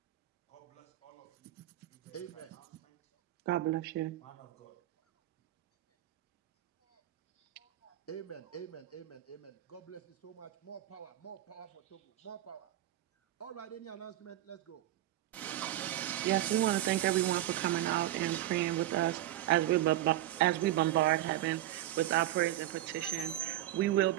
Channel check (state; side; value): quieter; left; 14.3 dB